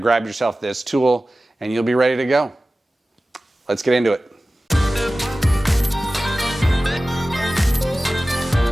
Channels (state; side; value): normal; both; correlation 0.96